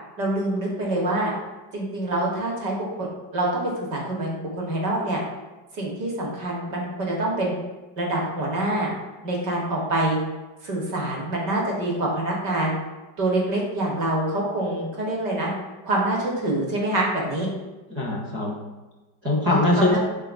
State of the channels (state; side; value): late; left; 5.2 ms